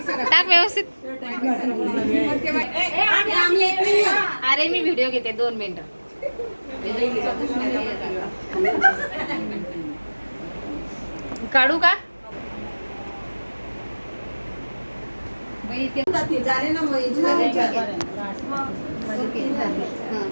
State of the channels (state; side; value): inverted; both; correlation -1.00